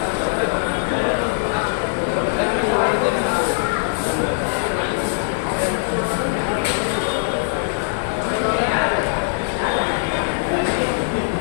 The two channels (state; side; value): silent; right; digital silence